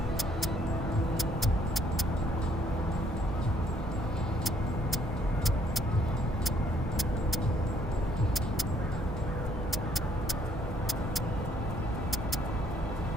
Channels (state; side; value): normal; both; correlation 0.67